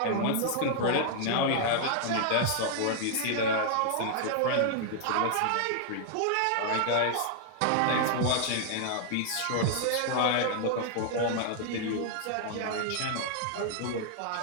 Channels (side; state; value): both; different; correlation 0.00